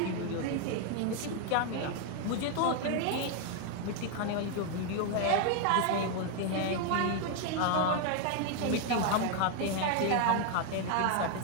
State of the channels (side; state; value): both; different; correlation 0.00